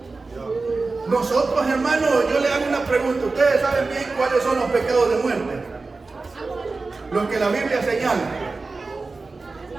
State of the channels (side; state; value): left; quieter; 3.8 dB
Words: Nosotros, hermanos, yo le hago una pregunta. ¿Ustedes saben bien cuáles son los pecados de muerte? Los que la Biblia señala.